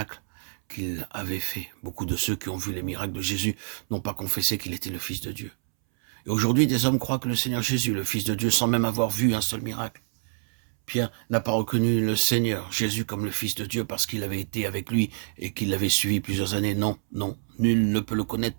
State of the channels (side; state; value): left; silent; 60 dB below the other